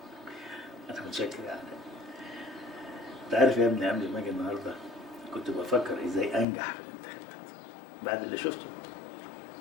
انا متشكر يا علاء. انت عارف يا ابني قبل ما اجي النهارده كنت بفكر ازاي انجح في الانتخابات. بعد اللي شفته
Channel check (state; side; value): drops out; right; at 6.5 s